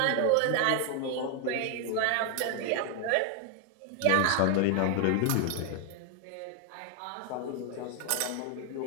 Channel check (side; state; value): both; different; correlation 0.00